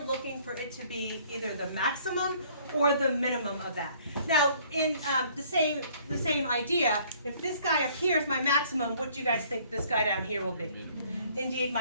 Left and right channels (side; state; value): both; inverted; correlation -0.58